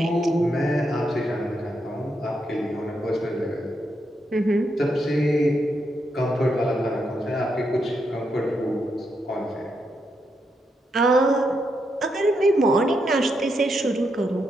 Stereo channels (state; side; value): normal; both; correlation 0.81